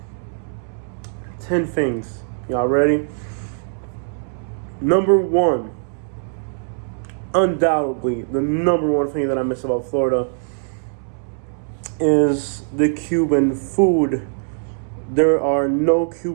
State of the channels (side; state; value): left; silent; 65 dB below the other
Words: 10 things. Y'all ready? Number one, undoubtedly, the number one thing that I miss about Florida is the Cuban food. There are no